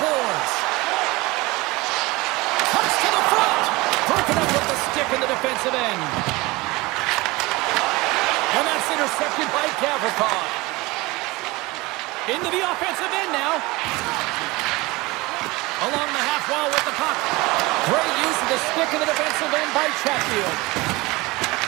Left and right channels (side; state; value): left; quieter; 22.4 dB